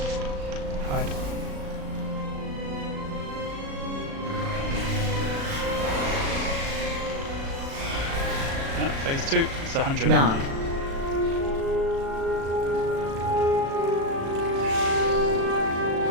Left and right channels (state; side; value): late; left; 36 ms